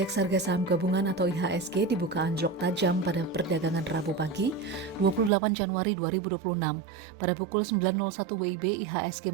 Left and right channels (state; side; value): drops out; left; at 5.3 s